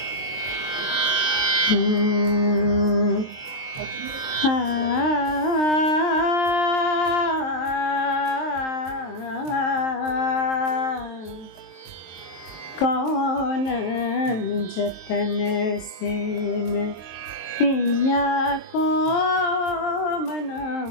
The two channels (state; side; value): late; right; 23 ms